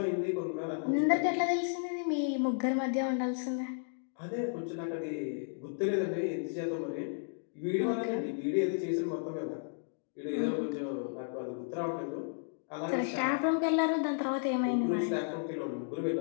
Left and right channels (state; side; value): silent; right; digital silence